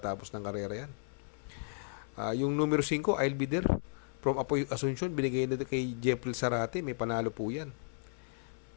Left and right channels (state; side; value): silent; right; 55 dB below the other